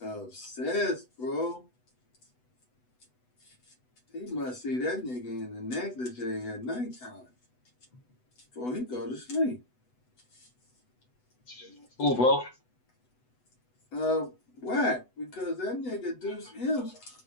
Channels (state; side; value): late; right; 8.0 ms